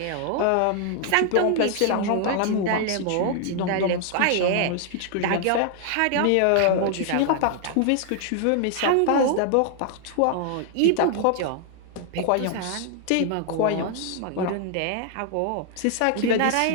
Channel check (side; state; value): both; different; correlation 0.00